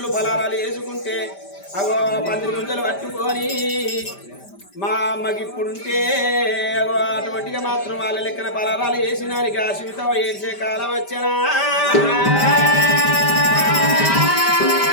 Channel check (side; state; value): right; late; 5.1 ms